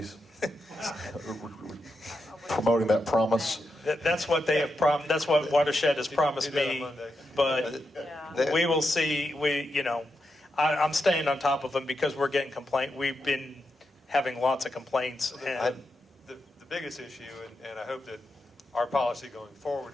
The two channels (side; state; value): both; normal; correlation 0.86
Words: promoting that promise? That's what they have that's what Watershed has promised Do that on me, Monday. but we will see. I'm staying on top of them because we're getting we've been having lots of complaints. And The biggest issue, and I hope that our policy going forward